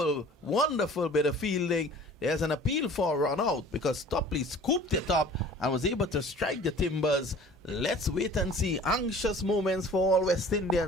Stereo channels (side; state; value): both; normal; correlation 0.46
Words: wonderful bit of fielding. There's an appeal for a run out because Topley scooped it up and was able to strike the timbers. Let's wait and see. Anxious moments for all West